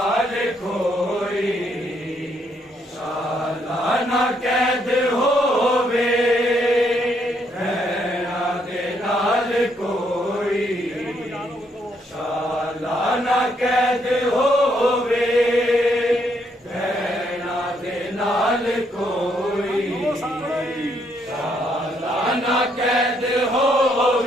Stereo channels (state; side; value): normal; both; correlation 0.73